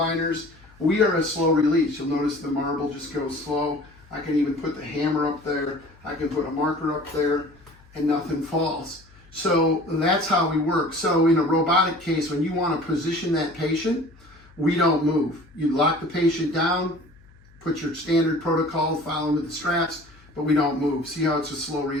We are a slow release. You'll notice the marble just goes slow. I can even put the hammer up there. I can put a marker up there and nothing falls. So that's how we work. So in a robotic case, when you want to position that patient, we don't move. You lock the patient down, put your standard protocol, follow with the straps, but we don't move. See how it's a slow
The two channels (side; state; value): left; noise; hum, 27 dB below the sound